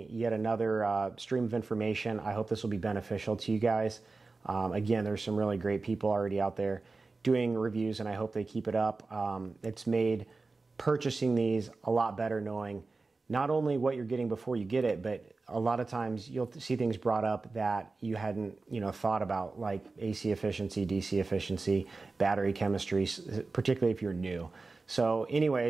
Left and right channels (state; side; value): quieter; left; 3.8 dB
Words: yet another stream of information, I hope this will be beneficial to you guys. Again, there's some really great people already out there doing reviews, and I hope they keep it up. It's made purchasing these a lot better, knowing not only what you're getting before you get it, but a lot of times you'll see things brought up that you hadn't thought about, like AC efficiency, DC efficiency, battery chemistry, particularly if you're new. So